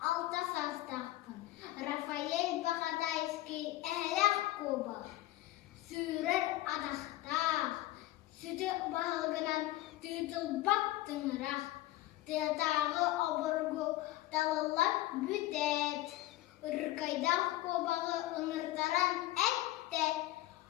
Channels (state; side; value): quieter; right; 16.3 dB